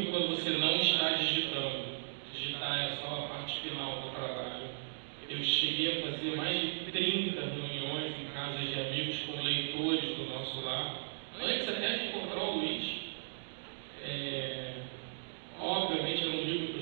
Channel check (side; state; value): left; silent; digital silence